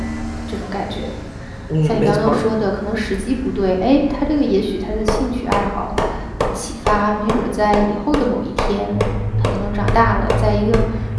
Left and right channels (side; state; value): both; identical; correlation 1.00